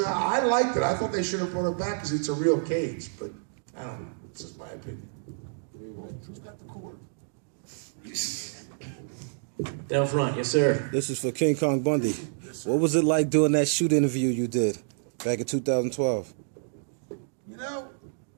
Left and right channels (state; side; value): silent; left; digital silence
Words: I liked it. I thought they should have brought it back because it's a real cage. But I don't know. It's just my opinion. Who's got the cord? Down front, yes, sir. This is for King Kong Bundy. What was it like doing that shoot interview you did back in 2012? You know,